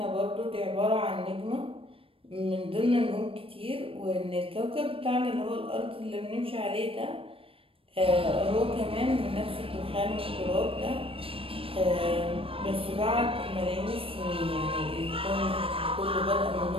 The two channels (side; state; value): left; late; 0.27 ms